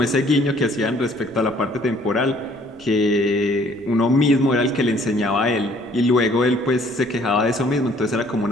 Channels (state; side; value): noise; right; rumble, 29 dB below the sound